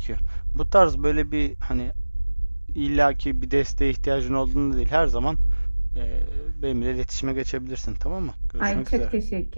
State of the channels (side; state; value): both; inverted; correlation -1.00